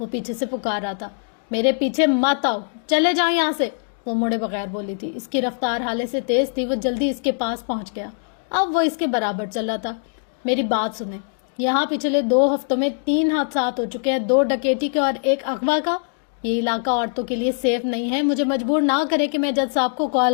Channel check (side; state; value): right; silent; digital silence